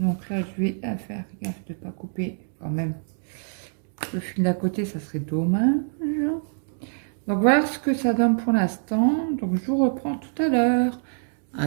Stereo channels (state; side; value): silent; left; digital silence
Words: là, je vais faire gaffe de ne pas couper quand même. Le fil d'à côté, ça serait dommage. Donc voilà ce que ça donne pour l'instant. Donc je vous reprends tout à l'heure.